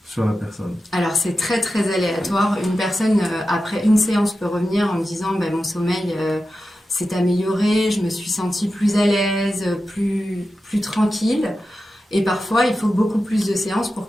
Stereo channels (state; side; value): normal; both; correlation 0.92